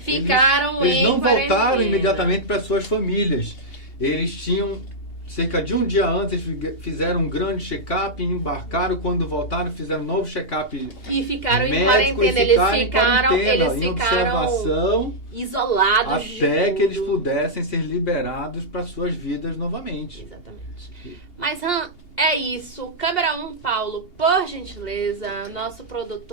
Eles não voltaram imediatamente para suas famílias. Eles tinham cerca de um dia antes, fizeram um grande check-up, embarcaram, quando voltaram, fizeram um novo check-up. E ficaram em quarentena. Eles ficaram isolados. Até que eles pudessem ser liberados para suas vidas novamente. Exatamente. Mas, Han, é isso. Câmera 1, Paulo, por gentileza. Nosso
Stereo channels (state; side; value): late; right; 2.8 ms